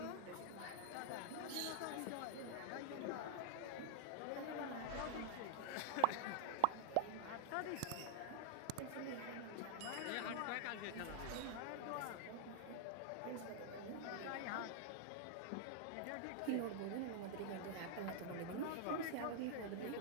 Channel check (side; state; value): both; different; correlation 0.00